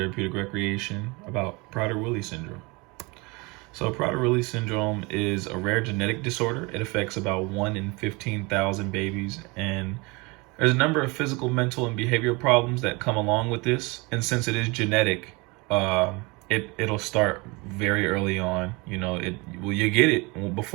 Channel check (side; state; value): left; quieter; 26.6 dB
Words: Recreation about Prader-Willi syndrome. So Prader-Willi syndrome is a rare genetic disorder. It affects about 1 in 15,000 babies, and there's a number of physical, mental, and behavioral problems that come along with this. And since it is genetic, it'll start very early on. You get it